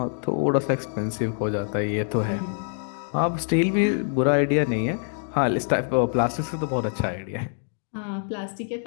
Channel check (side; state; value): right; silent; digital silence